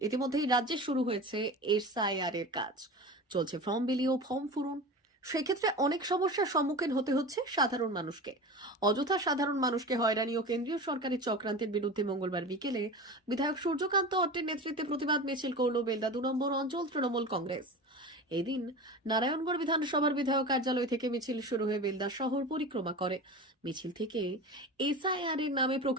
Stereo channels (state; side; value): normal; both; correlation 0.31